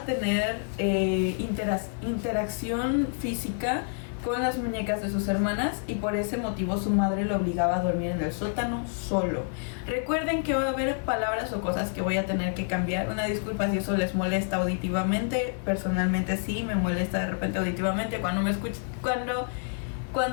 interacción física con las muñecas de sus hermanas, y por ese motivo su madre lo obligaba a dormir en el sótano solo. Recuerden que va a haber palabras o cosas que voy a tener que cambiar. Una disculpa si eso les molesta auditivamente. Personalmente sí me molesta de repente auditivamente cuando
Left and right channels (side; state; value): right; silent; 59 dB below the other